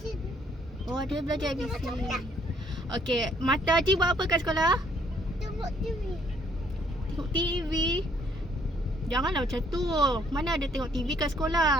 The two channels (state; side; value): normal; both; correlation 0.65